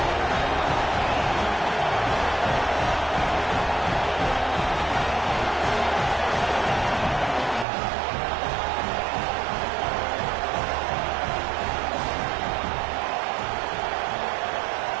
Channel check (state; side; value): drops out; left; at 7.7 s